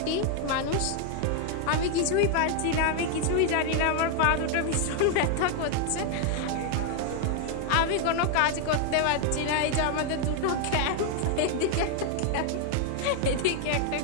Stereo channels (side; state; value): both; different; correlation 0.00